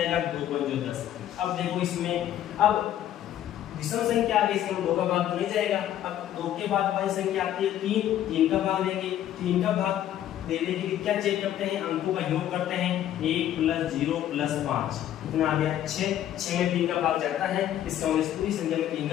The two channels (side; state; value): right; quieter; 11.6 dB